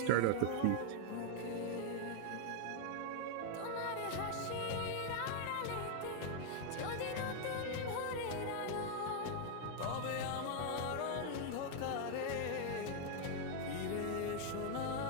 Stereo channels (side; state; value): both; different; correlation 0.00